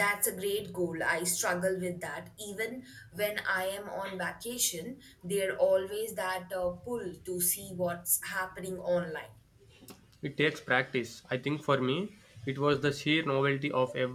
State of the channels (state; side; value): identical; both; correlation 1.00